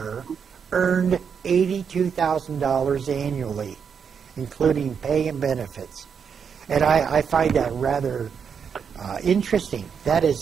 earned $82,000 annually, including pay and benefits. And I find that rather interesting. That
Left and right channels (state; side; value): quieter; left; 6.8 dB